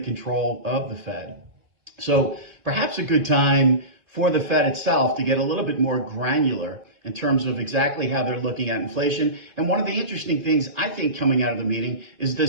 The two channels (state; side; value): late; left; 2.4 ms